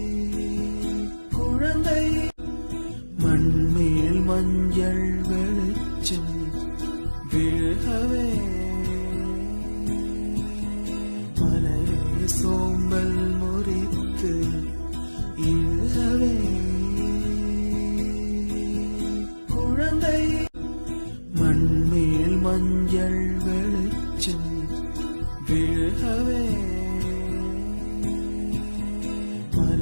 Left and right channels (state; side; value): inverted; both; correlation -1.00